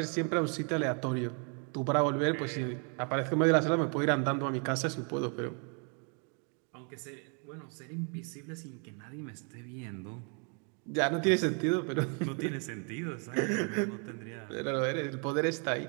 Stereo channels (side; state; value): left; quieter; 38.9 dB